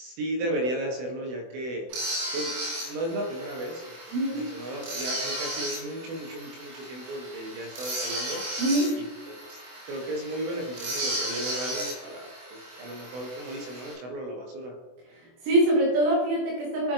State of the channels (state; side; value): late; left; 24 ms